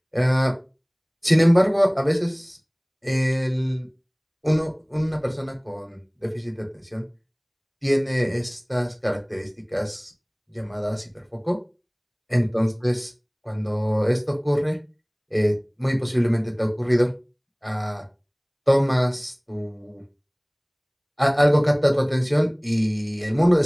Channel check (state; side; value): identical; both; correlation 1.00